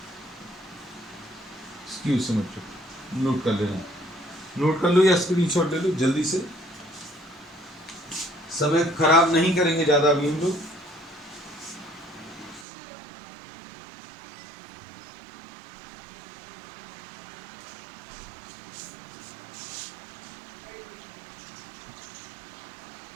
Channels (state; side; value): drops out; left; at 12.7 s